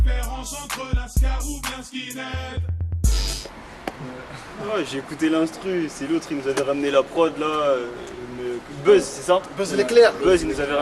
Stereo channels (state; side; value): identical; both; correlation 1.00